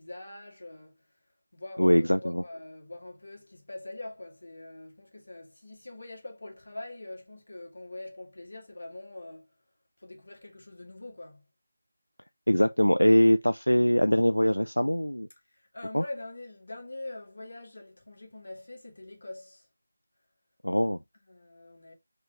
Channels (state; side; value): inverted; both; correlation -1.00